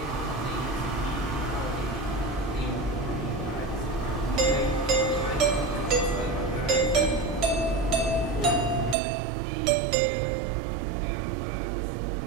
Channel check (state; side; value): drops out; left; at 9.0 s